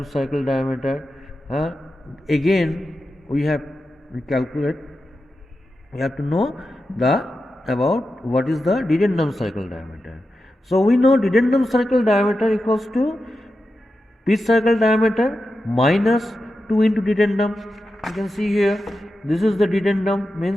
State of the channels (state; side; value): normal; both; correlation 0.90